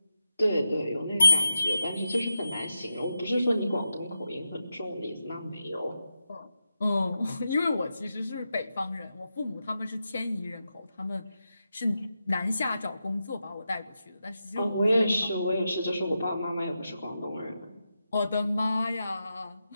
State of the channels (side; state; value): both; inverted; correlation -0.88